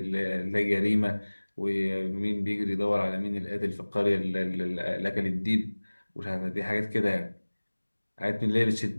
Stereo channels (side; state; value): both; inverted; correlation -1.00